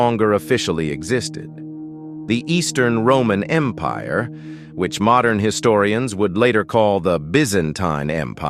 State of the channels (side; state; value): both; identical; correlation 1.00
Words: officially existed. The Eastern Roman Empire, which modern historians would later call the Byzantine